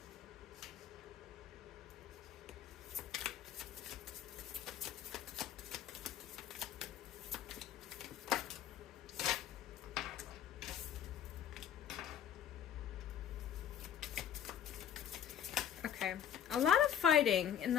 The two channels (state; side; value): quieter; right; 9.6 dB